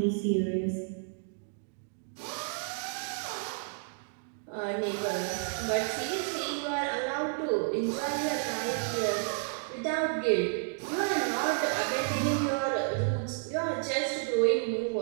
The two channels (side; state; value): left; silent; digital silence